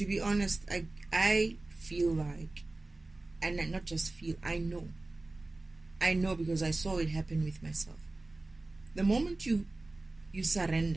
be honest, I feel like, and not just feel, I know because I saw it happen with myself. The moment you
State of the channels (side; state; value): left; quieter; 3.1 dB